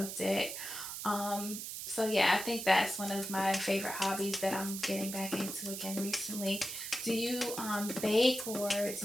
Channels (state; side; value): noise; right; hiss, 6 dB below the sound